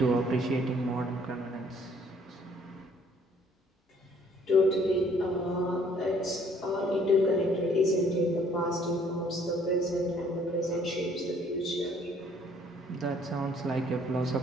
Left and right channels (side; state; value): both; normal; correlation 0.61